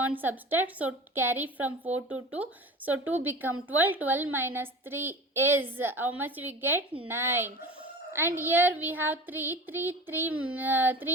subtract. So carry from 4 to 2. So 2 become 12. 12 minus 3 is how much we get? 9. And here we have 3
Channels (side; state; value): both; normal; correlation 0.35